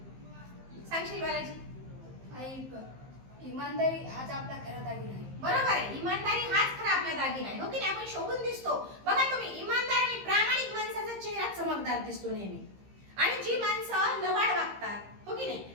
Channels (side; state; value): left; late; 15 ms